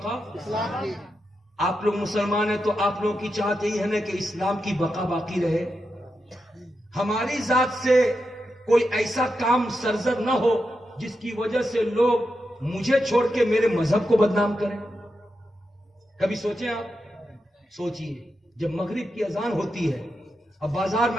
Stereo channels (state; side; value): normal; both; correlation 0.87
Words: آپ لوگ مسلمان ہیں تو آپ لوگوں کی چاہت یہی ہے نا کہ اسلام کی بقا باقی رہے، ہماری ذات سے کوئی ایسا کام سرزد نہ ہو جس کی وجہ سے لوگ مجھے چھوڑ کے میرے مذہب کو بدنام کریں۔ کبھی سوچیں آپ، سوچئے جب مغرب کی اذان ہوتی ہے اب بازار